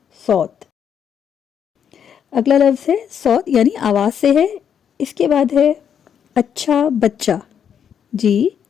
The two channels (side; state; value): right; quieter; 8.2 dB